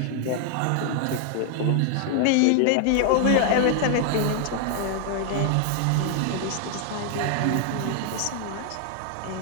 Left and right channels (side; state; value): both; different; correlation 0.00